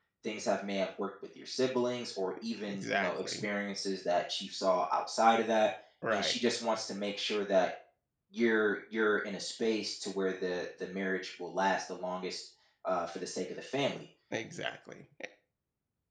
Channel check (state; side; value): identical; both; correlation 1.00